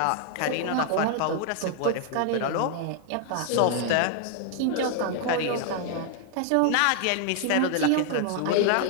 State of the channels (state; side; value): different; both; correlation 0.00